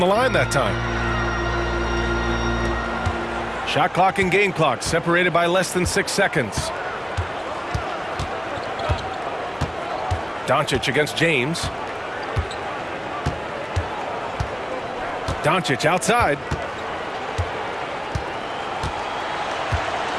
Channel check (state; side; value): identical; both; correlation 1.00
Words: line that time. Shot clock and game clock separated by less than 6 seconds. Doncic against James. Doncic outside.